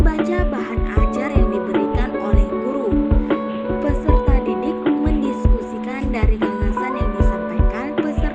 bahan ajar yang diberikan oleh guru. Peserta didik mendiskusikan dari gagasan yang disampaikan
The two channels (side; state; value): both; identical; correlation 1.00